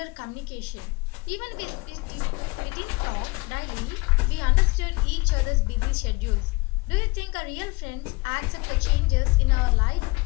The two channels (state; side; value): quieter; right; 25.4 dB